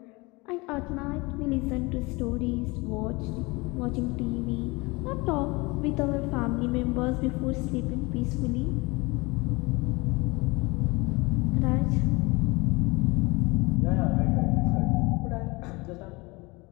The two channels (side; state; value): right; quieter; 25.0 dB